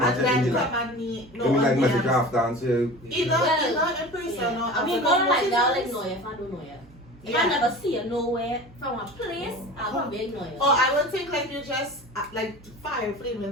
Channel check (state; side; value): normal; both; correlation 0.36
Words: and at then the come like, at me maybe like on message DMs. after and say, Either in person Yeah. or I mean, after going like that, I'll conversations. ignore you if I don't know you. If Yeah. I never see you nowhere from a place, I won't be ignore you. Or I would think like you just like fire